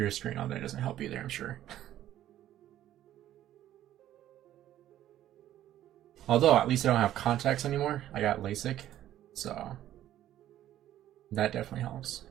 screen all day doesn't help either, I'm sure. Although, at least I don't have contacts anymore. I got LASIK, so that definitely helps.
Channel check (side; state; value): left; quieter; 12.5 dB